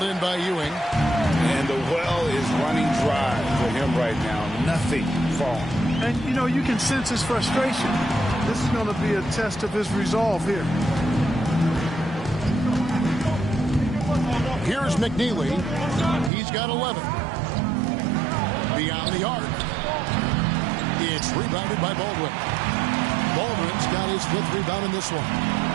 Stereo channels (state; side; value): drops out; left; at 16.3 s